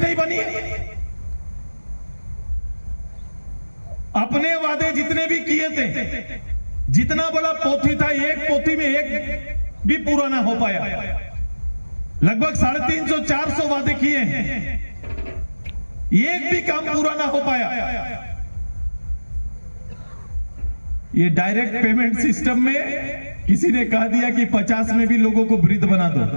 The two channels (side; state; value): both; inverted; correlation -1.00